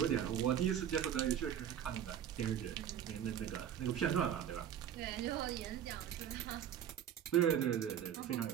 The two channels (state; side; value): quieter; left; 9.7 dB